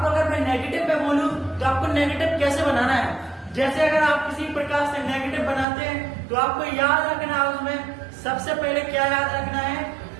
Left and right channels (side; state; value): left; drops out; at 5.7 s